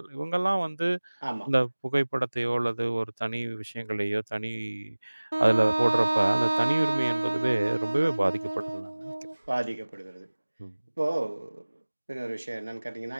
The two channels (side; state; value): both; inverted; correlation -1.00